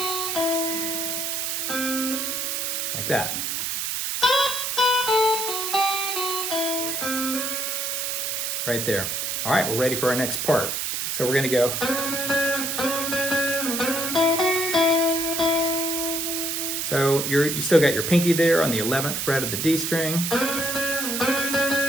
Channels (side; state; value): right; noise; hiss, 1 dB below the sound